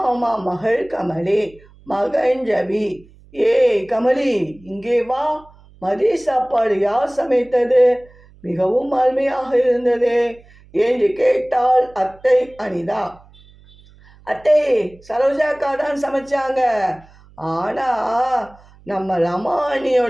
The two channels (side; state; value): right; noise; hum, 26 dB below the sound